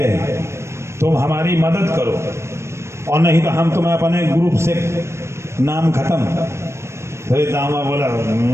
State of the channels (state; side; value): late; left; 0.13 ms